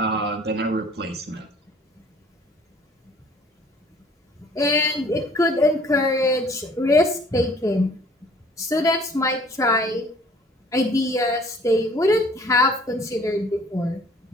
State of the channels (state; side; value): normal; both; correlation 0.55